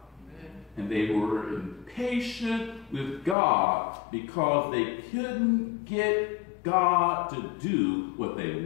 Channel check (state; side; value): drops out; right; at 3.4 s